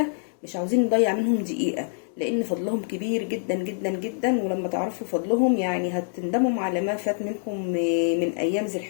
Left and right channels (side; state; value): right; silent; 61 dB below the other